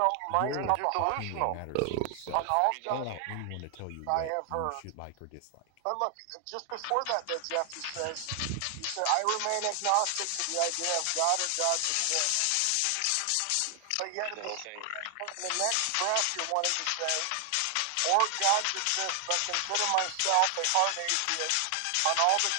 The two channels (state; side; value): different; both; correlation 0.00